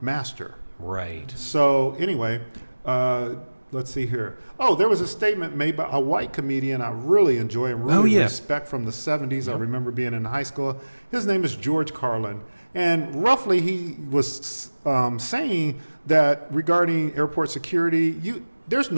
master. Right. So anyway, let's see here. Oh, there was a statement made by a white comedian I really enjoy and really respect from the 70s. I remember being in high school. His name is George Carlin. And roughly he was saying that regarding airport security, there's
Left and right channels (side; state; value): both; inverted; correlation -1.00